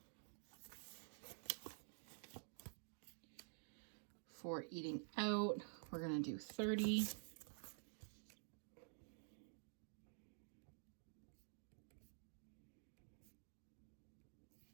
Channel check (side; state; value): left; silent; digital silence